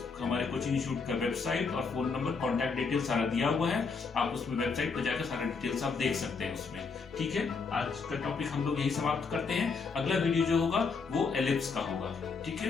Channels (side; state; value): right; quieter; 4.9 dB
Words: हमारे कोचिंग इंस्टीट्यूट का वेबसाइट और फोन नंबर, कॉन्टैक्ट डिटेल सारा दिया हुआ है, आप उसमें वेबसाइट पर जाकर सारा डिटेल्स आप देख सकते हैं उसमें। ठीक है, आज का टॉपिक हम लोग यही समाप्त करते हैं। अगला वीडियो जो होगा वो एलिप्स का होगा। ठीक